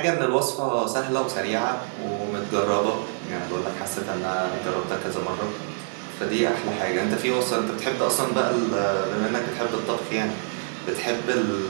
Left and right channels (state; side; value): silent; left; 61 dB below the other